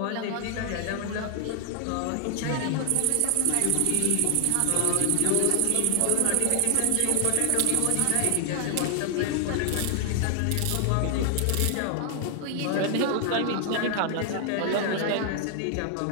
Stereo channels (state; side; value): different; both; correlation 0.00